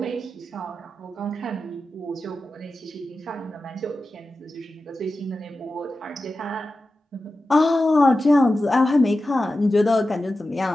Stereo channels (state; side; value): normal; both; correlation 0.93